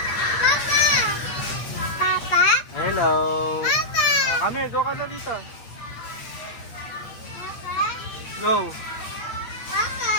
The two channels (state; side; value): late; right; 8.9 ms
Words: Papa? Hello. Papa? Kami, go ka na dito. Papa? Go. Papa?